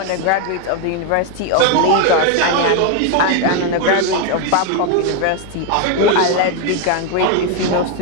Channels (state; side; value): different; both; correlation 0.01